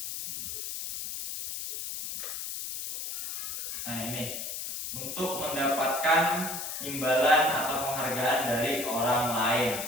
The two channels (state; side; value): noise; left; hiss, 5 dB below the sound